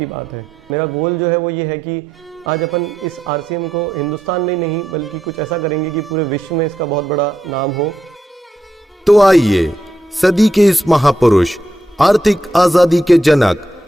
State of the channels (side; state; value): both; normal; correlation 0.83